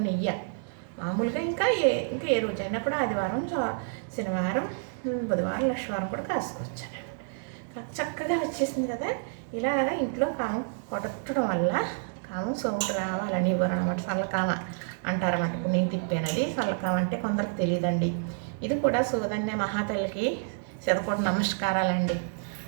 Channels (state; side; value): silent; left; digital silence